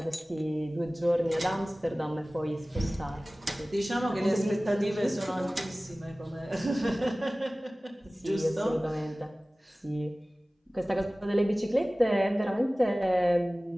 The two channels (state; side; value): normal; both; correlation 0.98